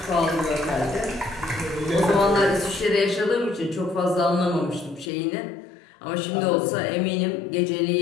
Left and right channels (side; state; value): right; drops out; at 5.1 s